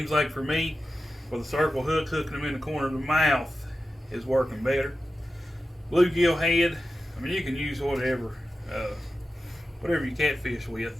like for me, with a circle hook, hooking them in the corner of the mouth is working better. Bluegill head, I mean, you can use whatever you catfish with.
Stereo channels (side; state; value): both; normal; correlation 0.93